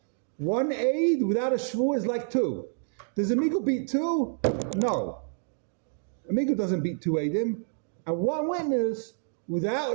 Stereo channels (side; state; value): left; silent; 59 dB below the other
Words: 1 aid without a shua is like 2. Does a migu beat 2? No. A migu doesn't beat 2 aidim, and 1 witness without